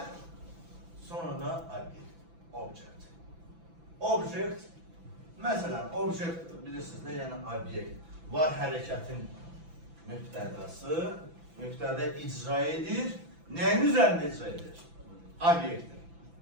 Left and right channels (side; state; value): left; late; 6.0 ms